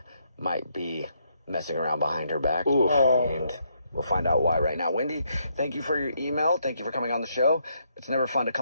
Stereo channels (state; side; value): inverted; both; correlation -0.75